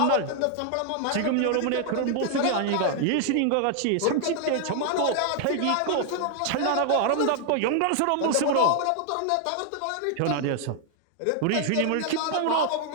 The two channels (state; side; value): different; both; correlation 0.00